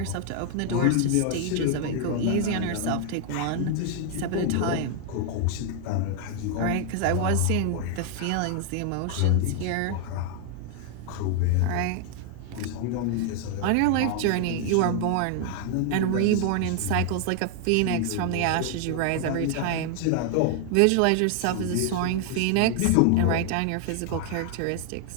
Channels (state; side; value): different; both; correlation 0.00